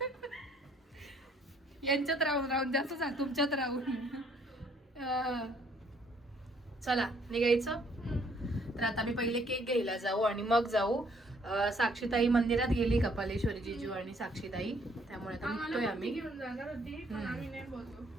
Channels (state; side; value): normal; both; correlation 0.64